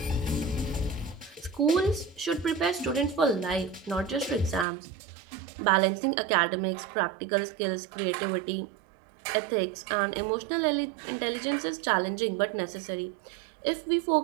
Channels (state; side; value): drops out; left; at 4.7 s